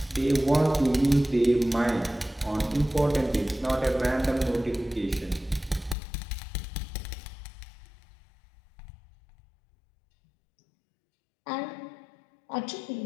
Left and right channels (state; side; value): drops out; right; at 6.0 s